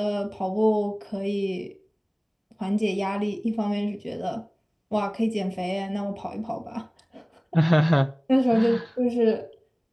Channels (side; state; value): both; identical; correlation 1.00